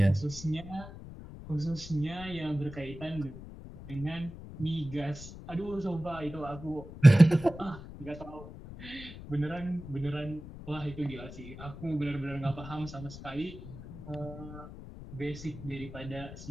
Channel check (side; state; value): left; noise; rumble, 13 dB below the sound